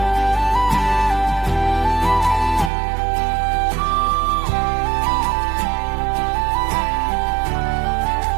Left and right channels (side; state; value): left; drops out; at 2.7 s